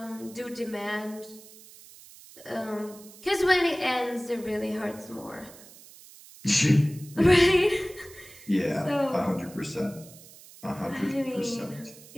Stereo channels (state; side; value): noise; right; hiss, 20 dB below the sound